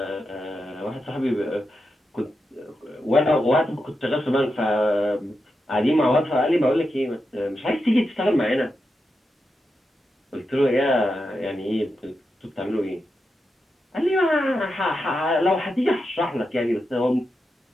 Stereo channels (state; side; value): normal; both; correlation 0.87